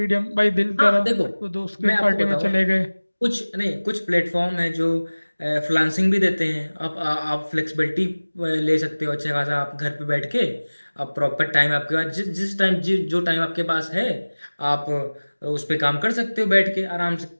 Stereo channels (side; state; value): both; inverted; correlation -1.00